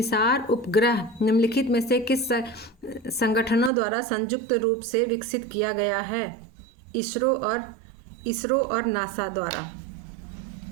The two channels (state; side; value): drops out; left; at 3.7 s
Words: उपग्रह निम्नलिखित में से किस संगठनों द्वारा संयुक्त रूप से विकसित किया गया है? इसरो और नासा द्वारा।